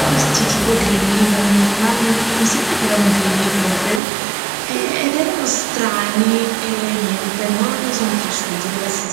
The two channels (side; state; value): left; drops out; at 4.0 s